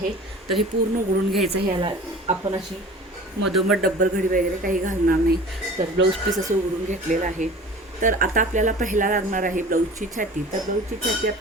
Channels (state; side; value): normal; both; correlation 0.42